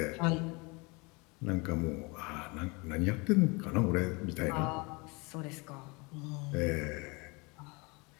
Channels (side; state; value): right; quieter; 27.9 dB